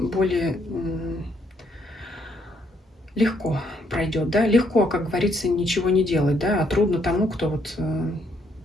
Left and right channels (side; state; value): both; normal; correlation 0.71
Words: легко пройдет, да, легко, как говорится, ничего не делать, да, а трудно тому, кто вот,